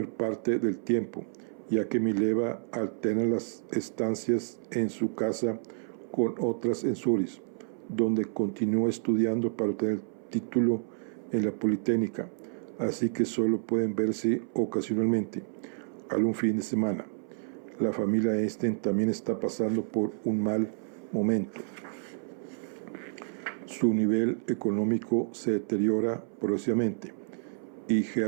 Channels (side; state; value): left; silent; 58 dB below the other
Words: parte del tiempo, ya que Mileva alterna las estancias en su casa con otras en Zúrich, donde continúa estudiando para obtener el título en la Politécnica, así que solo pueden verse ocasionalmente, algún fin de semana. La familia Eystein también está pasando por un mal momento. Su nivel económico se deteriora progresivamente y